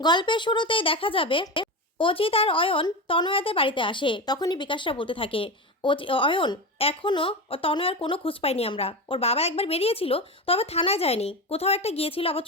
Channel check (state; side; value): normal; both; correlation 0.21